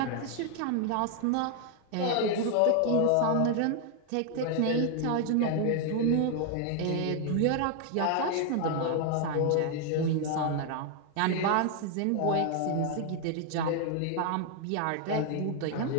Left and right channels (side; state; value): both; different; correlation 0.00